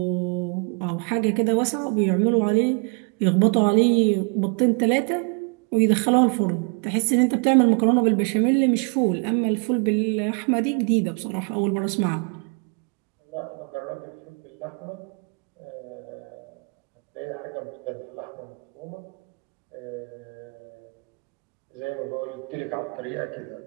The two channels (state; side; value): quieter; left; 36.6 dB